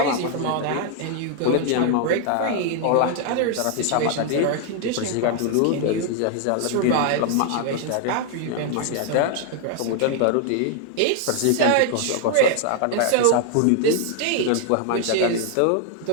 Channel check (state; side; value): different; both; correlation 0.00